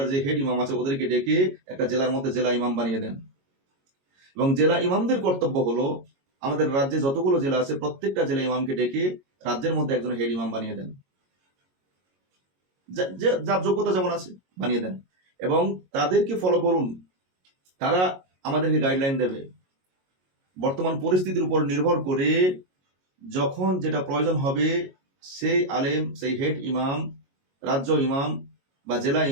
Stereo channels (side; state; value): left; late; 22 ms